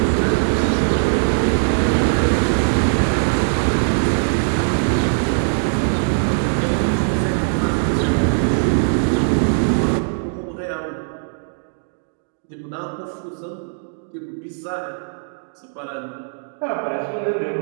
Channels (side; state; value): left; silent; digital silence